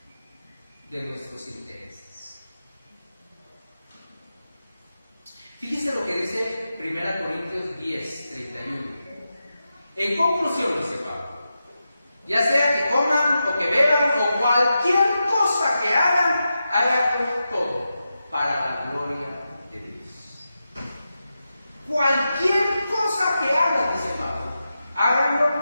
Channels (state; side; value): inverted; both; correlation -0.90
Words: de nuestros intereses. Fíjese lo que dice 1 Corintios 10, 31. En conclusión, dice Pablo, ya sea que coman o que beban o cualquier cosa que hagan todo para la gloria de Dios. Cualquier cosa que hagan, dice Pablo, háganlo